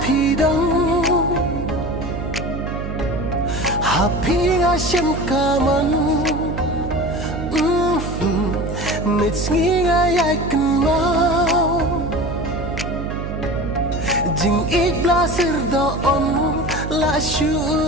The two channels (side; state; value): right; noise; hum, 6 dB below the sound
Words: pidong Happy nga siyang kaman Mitski nga yakin mau Jing igla sir doon La